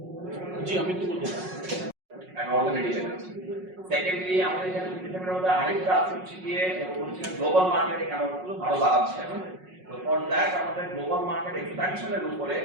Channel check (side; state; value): left; late; 5.4 ms